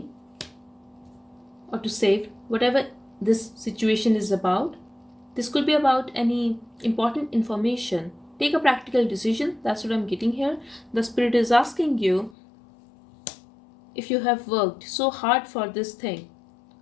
or to save whatever this situation is about. This could be about any important information. Take a practical decision. That's what I'm getting here. The spirit is asking you if you have worked so hard for this thing.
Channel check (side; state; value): right; drops out; at 12.4 s